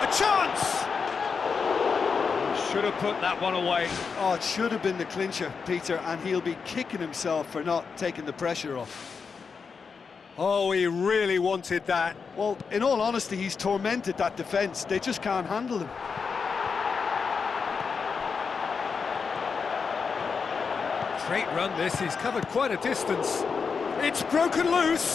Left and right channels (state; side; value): quieter; right; 5.5 dB